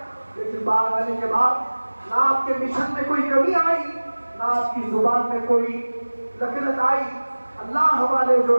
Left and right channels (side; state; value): both; inverted; correlation -1.00